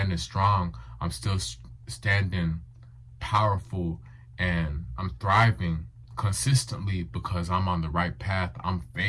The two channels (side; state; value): both; identical; correlation 1.00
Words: strong. I'm still standing powerful, and I'm thriving consistently because I'm on the right path. I'm